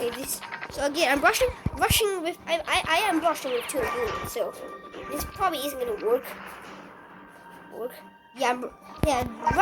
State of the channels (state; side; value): identical; both; correlation 1.00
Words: so again, I'm rushing with. I am rushing with 2 units, so this probably isn't gonna work. Yeah,